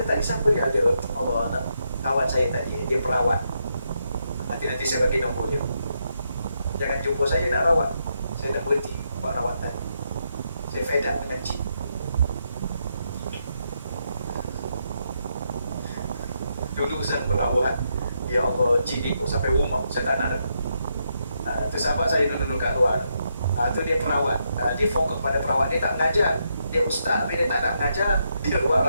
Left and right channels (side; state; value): both; inverted; correlation -0.80